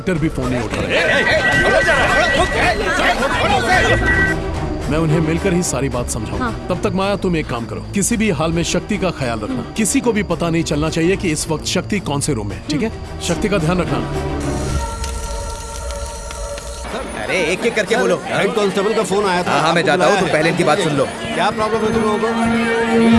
भी फोन नहीं उठा रहे। मैं उन्हें मिलकर ही सारी बात समझाऊंगा। हाँ। तब तक माया तुम एक काम करो, किसी भी हाल में शक्ति का ख्याल रखना। किसी को भी पता नहीं चलना चाहिए कि इस वक्त शक्ति कौन से रूम में है, ठीक है? शक्ति का ध्यान रखना। अरे एक एक करके बोलो। हेड कांस्टेबल का फोन आया था। हाँ, मैं जाता हूँ, तुम पहले इनकी बात सुन लो। क्या प्रॉब्लम है तुम लोगों को?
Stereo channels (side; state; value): both; identical; correlation 1.00